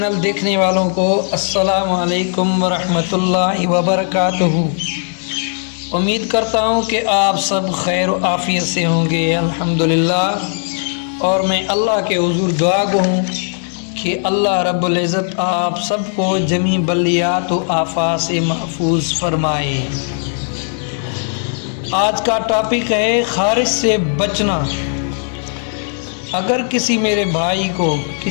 دیکھنے والوں کو السلام علیکم ورحمۃ اللہ وبرکاتہ۔ امید کرتا ہوں کہ آپ سب خیر و عافیت سے ہوں گے، الحمدللہ۔ اور میں اللہ کے حضور دعا گو ہوں کہ اللہ رب العزت آپ سب کو جمیع بلیات و آفات سے محفوظ فرمائے۔ آج کا ٹاپک ہے خارش سے بچنا۔ اگر کسی میرے بھائی کو،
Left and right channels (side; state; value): right; silent; 58 dB below the other